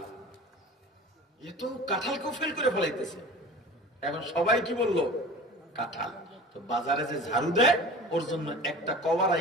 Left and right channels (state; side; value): normal; both; correlation 0.38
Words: এ তো কাঁঠালকেও ফেল করে ফেলাইতেছে। এখন সবাই কি বললো? কাঁঠাল। তো বাজারে যে ঝাড়ু দেয় ওর জন্য একটা কভার